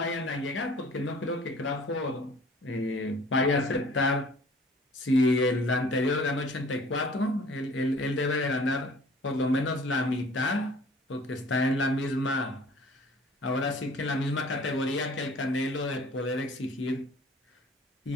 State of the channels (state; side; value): normal; both; correlation 0.50